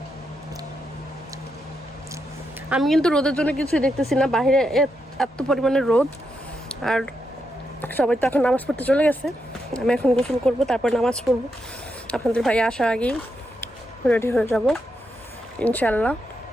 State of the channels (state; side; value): normal; both; correlation 0.83